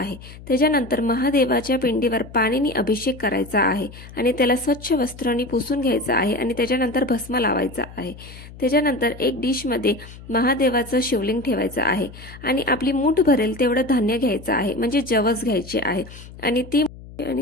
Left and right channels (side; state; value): left; noise; hum, 17 dB below the sound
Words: त्याच्यानंतर महादेवाच्या पिंडीवर पाणीने अभिषेक करायचा आहे आणि त्याला स्वच्छ वस्त्रांनी पुसून घ्यायचं आहे आणि त्याच्यानंतर भस्म लावायचा आहे. त्याच्यानंतर एक डिशमध्ये महादेवाचं शिवलिंग ठेवायचं आहे आणि आपली मूठ भरेल तेवढं धान्य घ्यायचं आहे, म्हणजे जवस घ्यायचे आहे आणि